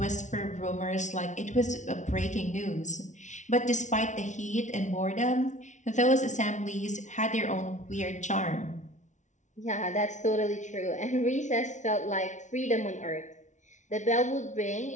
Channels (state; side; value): late; right; 0.36 ms